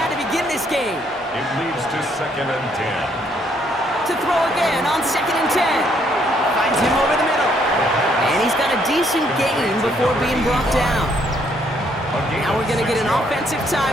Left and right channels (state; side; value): normal; both; correlation 0.69